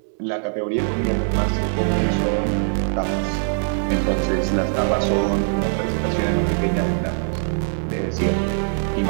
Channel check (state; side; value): silent; left; digital silence